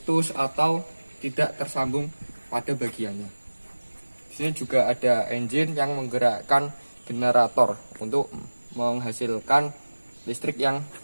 atau tidak tersambung pada bagiannya. Di sini juga ada engine yang menggerakkan generator untuk menghasilkan listrik yang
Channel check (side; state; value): both; inverted; correlation -1.00